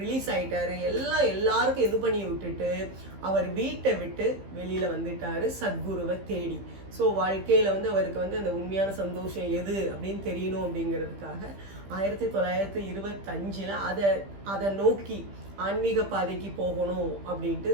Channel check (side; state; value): left; late; 15 ms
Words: ரிலீஸ் ஆகிட்டாரு, எல்லாருக்கும் இது பண்ணி விட்டுட்டு அவர் வீட்டை விட்டு வெளியில வந்துட்டாரு சத்குருவை தேடி. ஸோ வாழ்க்கையில வந்து அவருக்கு வந்து அந்த உண்மையான சந்தோஷம் எது அப்படின்னு தெரியணும் அப்படிங்கிறதுக்காக 1925 அதை நோக்கி ஆன்மீக பாதைக்கு போகணும் அப்படின்ட்டு,